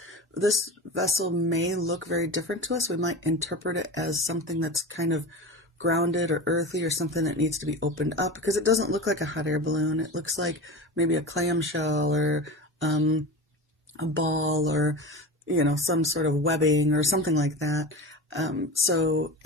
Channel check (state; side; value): normal; both; correlation 0.28